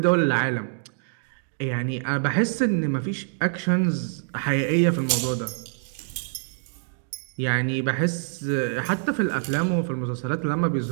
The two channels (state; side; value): silent; left; digital silence